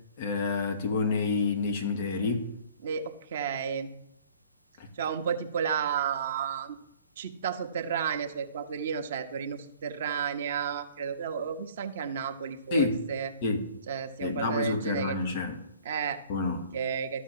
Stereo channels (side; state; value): both; inverted; correlation -0.50